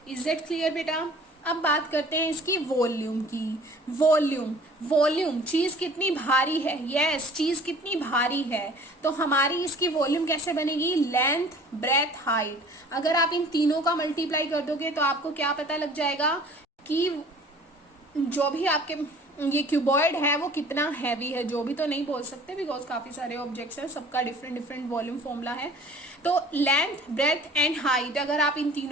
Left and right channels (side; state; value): both; normal; correlation 0.49